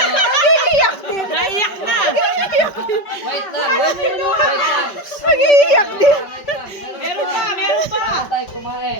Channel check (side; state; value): right; late; 5.2 ms